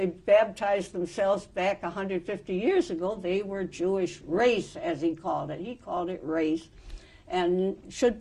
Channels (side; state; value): both; identical; correlation 1.00